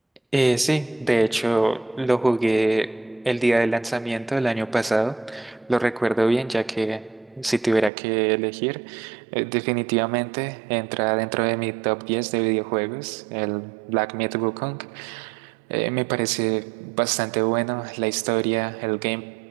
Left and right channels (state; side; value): drops out; left; at 7.9 s